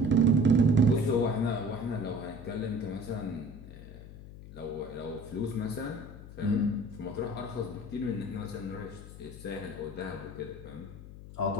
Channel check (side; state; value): left; noise; hum, 14 dB below the sound